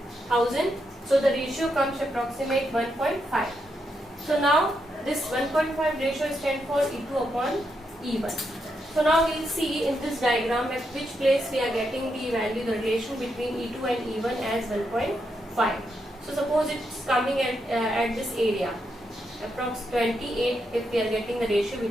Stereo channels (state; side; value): normal; both; correlation 0.82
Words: So the ratio comes approximate 1.5. So now this 1.5 ratio stands for E2 upon E1. So now we'll see in this diagram at which place we are getting the value, the relation between E2 and E1 as 1.5. So suppose it's coming at this area, approx 28, if we are getting the ratio